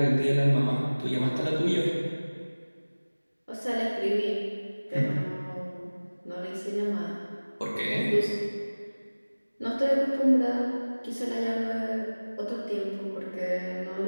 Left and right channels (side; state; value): both; inverted; correlation -1.00